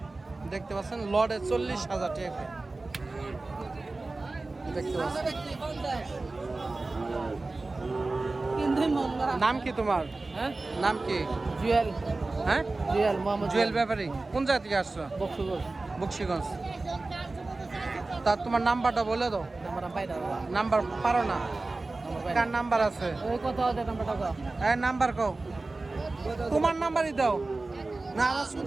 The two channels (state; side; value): quieter; left; 3.3 dB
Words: দেখতে পাচ্ছেন। লড়ে 40,000 টাকা দেখতে পাচ্ছেন। নাম কি তোমার? নাম কি? জুয়েল। হ্যাঁ, জুয়েল মোহাম্মদ জুয়েল ব্যাপারী। কোন জায়গা থেকে আসছো? বক্সিগঞ্জ। তা তোমার নাম্বারটা বলে দাও। নাম্বার পারো না? কার নাম্বার আছে? এই নাম্বার কও। তোমার নাম্বারই দাও না, আমার